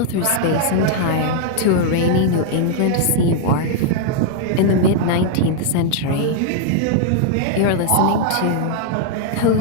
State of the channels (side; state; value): both; different; correlation -0.01